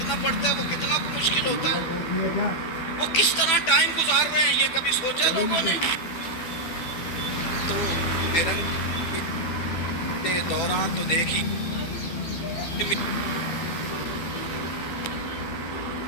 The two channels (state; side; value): late; right; 12 ms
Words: पड़ता है वो कितना को मुश्किल होता है। वो किस तरह टाइम गुजार रहे हैं ये कभी सोचा लोगों ने? तो मेरे दौरान तो देखी